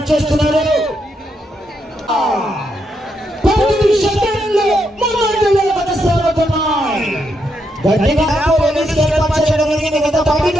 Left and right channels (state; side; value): normal; both; correlation 0.80